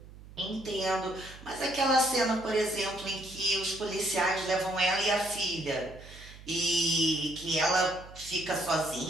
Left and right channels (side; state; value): right; noise; hum, 18 dB below the sound